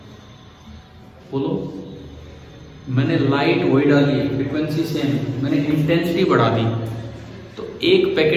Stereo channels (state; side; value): identical; both; correlation 1.00